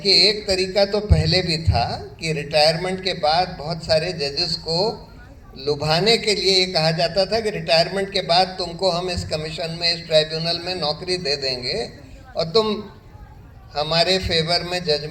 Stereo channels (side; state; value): both; identical; correlation 1.00